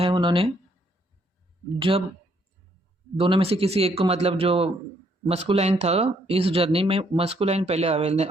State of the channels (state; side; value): normal; both; correlation 0.70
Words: उन्होंने? जब दोनों में से किसी एक को, मतलब जो मस्कुलाइन था, इस जर्नी में मस्कुलाइन पहले